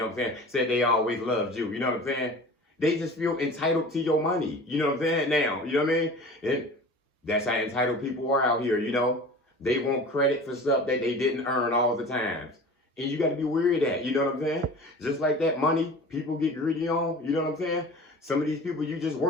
what I'm saying? Said they always loved you. You know what I'm saying? They just feel entitled to your money. You know what I'm saying? Now, you know what I mean? And that's how entitled people are out here. You know, they want credit for stuff that they didn't earn all the times. And you got to be wary of that. You know what I'm saying? Just like that money people get greedy on. You know what I'm saying? Some of these people you just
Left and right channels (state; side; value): normal; both; correlation 0.40